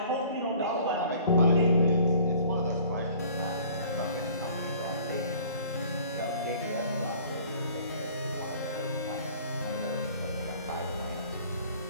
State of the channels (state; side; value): inverted; both; correlation -0.51